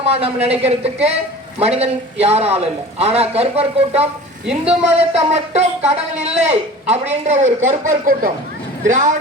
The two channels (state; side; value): normal; both; correlation 0.40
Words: நம்ம நினைக்கிறதுக்கு மனிதன் யாரும் இல்லை. ஆனா கருப்பர் கூட்டம் இந்து மதத்தை மட்டும் கடவுள் இல்லை அப்படின்ற ஒரு கருப்பர் கூட்டம்,